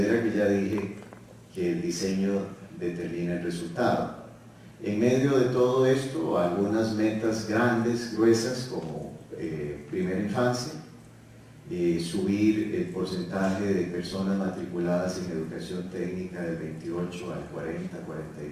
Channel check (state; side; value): identical; both; correlation 1.00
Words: que ya dije que el diseño determina el resultado. En medio de todo esto, algunas metas grandes, gruesas, como primera infancia, subir el porcentaje de personas matriculadas en educación técnica del 28 al